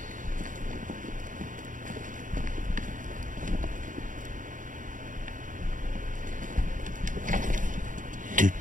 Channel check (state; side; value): late; left; 0.38 ms